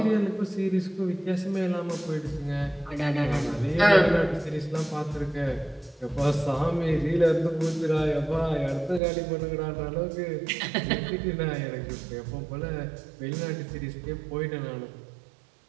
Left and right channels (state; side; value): drops out; left; at 9.0 s